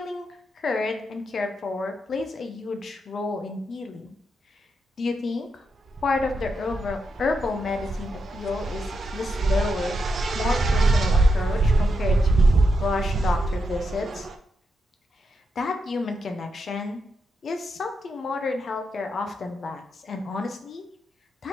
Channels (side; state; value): both; normal; correlation 0.84